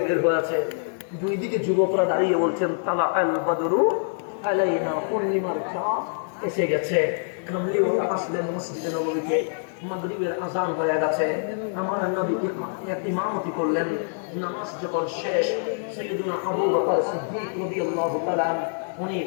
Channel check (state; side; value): silent; right; digital silence